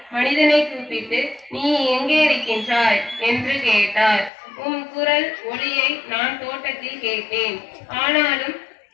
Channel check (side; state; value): right; drops out; at 4.3 s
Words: மனிதனை கூப்பிட்டு, நீ எங்கே இருக்கின்றாய் என்று கேட்டார். உம் குரல் ஒலியை நான் தோட்டத்தில் கேட்டேன்.